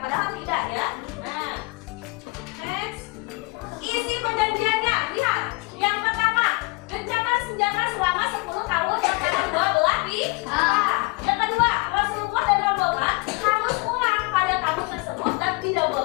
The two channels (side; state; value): right; quieter; 26.7 dB